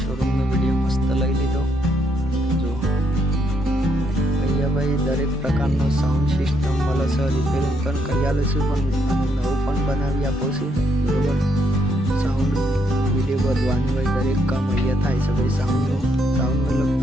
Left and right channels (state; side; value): normal; both; correlation 0.74